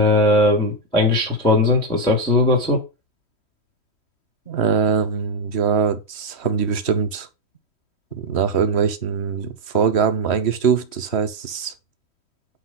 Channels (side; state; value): right; late; 3.1 ms